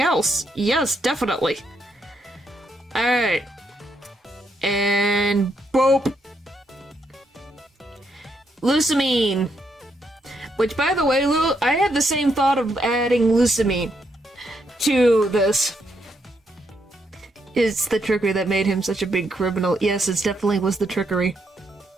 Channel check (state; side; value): normal; both; correlation 0.77